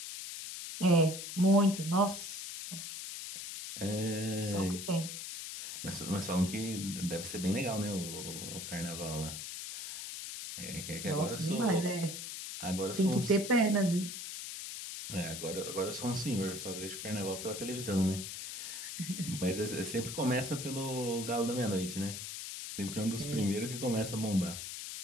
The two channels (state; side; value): noise; left; hiss, 7 dB below the sound